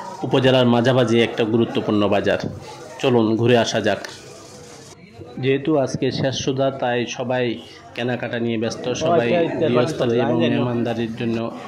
উপজেলার মাঝামাঝি একটা গুরুত্বপূর্ণ বাজার। চলুন ঘুরে আসা যাক। যেহেতু আজকে শেষ সুধা, তাই সবাই কেনাকাটা নিয়ে ব্যস্ত। সবাই গৃহস্থালী এবং মেহমানদারির জন্য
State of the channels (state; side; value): identical; both; correlation 1.00